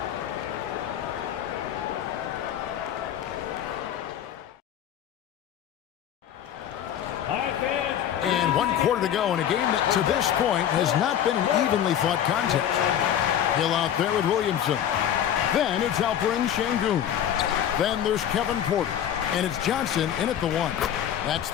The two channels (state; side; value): quieter; right; 10.1 dB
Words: And 1 quarter to go in a game that to this point has not been an evenly fought contest. Hill out there with Williamson. Then it's Alperen Şengün. Then there's Kevin Porter. And it's Johnson in at the 1. That's